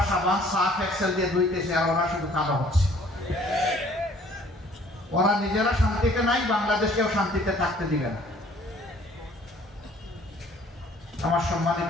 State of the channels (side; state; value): both; normal; correlation 0.56